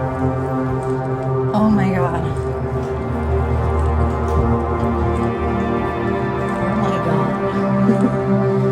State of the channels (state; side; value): identical; both; correlation 1.00